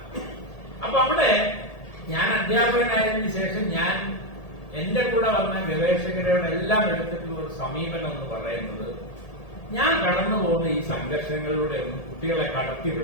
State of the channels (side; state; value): right; late; 1.8 ms